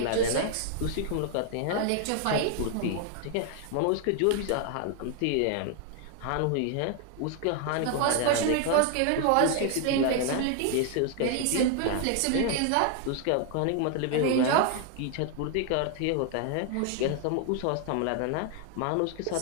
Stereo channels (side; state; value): both; different; correlation 0.00